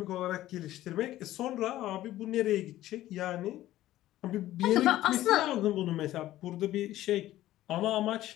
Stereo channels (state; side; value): quieter; right; 14.6 dB